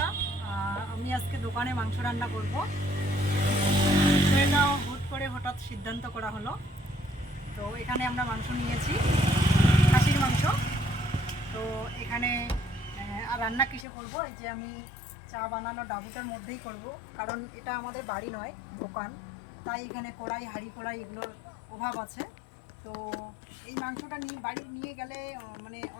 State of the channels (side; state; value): right; drops out; at 13.9 s